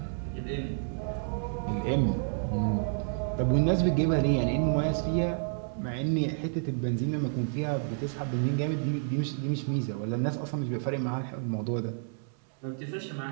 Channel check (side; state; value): left; silent; 58 dB below the other